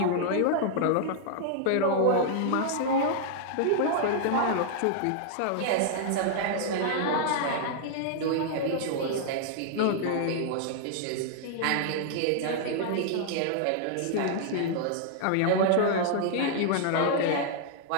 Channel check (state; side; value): different; both; correlation -0.01